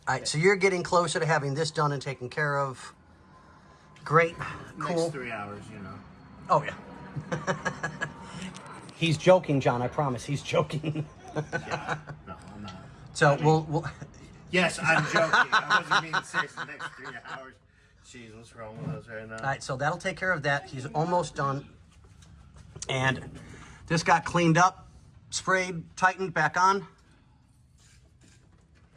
All right, so you're getting closer to having this done and taken care of. Great. Cool. Next 3 hours, you know. Oh, yeah. He's joking, John. I promise. He's joking. Yeah. No, I'm not. So we'll Yes, I'm joking. I wasn't being serious. The next 3 hours. Jeez, what's wrong with us right now? All right, so that'll take care of that. He's almost done. And this got cleaned up, sprayed, tightened, back on.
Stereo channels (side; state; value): both; identical; correlation 1.00